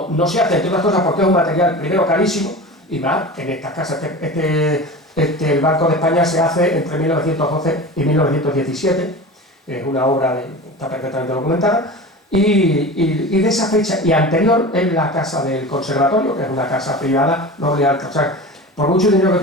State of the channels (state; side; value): normal; both; correlation 0.32